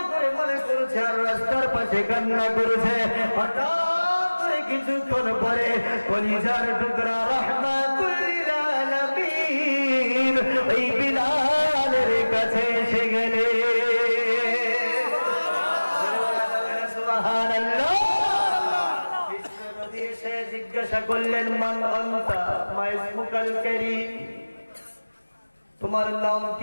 করে মনে করছে আর রাস্তার পাশে কান্না করেছে। হঠাৎ করে কিছুক্ষণ পরে কলিজার টুকরা রাহমাতুল লিল আলামিন ওই বিলালের কাছে এসে গেলে। জিজ্ঞাসা করলেন, মান আনতা, মা ইসমুকাল কারীম, তোমার নাম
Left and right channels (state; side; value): inverted; both; correlation -1.00